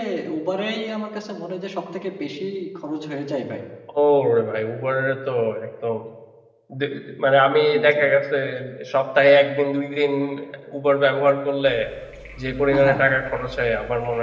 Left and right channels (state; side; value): identical; both; correlation 1.00